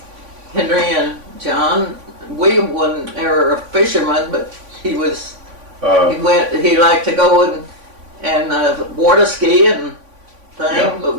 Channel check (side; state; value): left; late; 3.5 ms